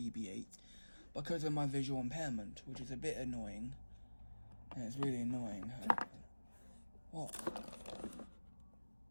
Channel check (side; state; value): both; inverted; correlation -1.00